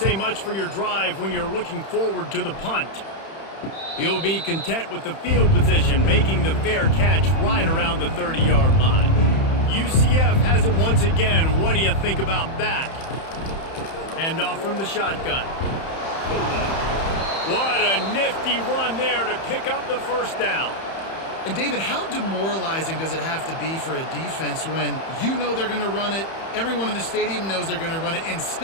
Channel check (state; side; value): late; right; 31 ms